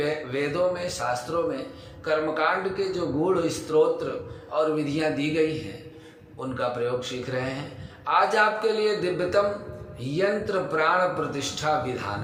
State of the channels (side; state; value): both; identical; correlation 1.00